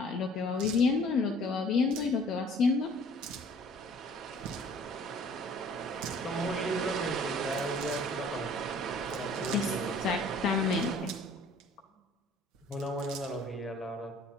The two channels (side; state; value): both; normal; correlation 0.53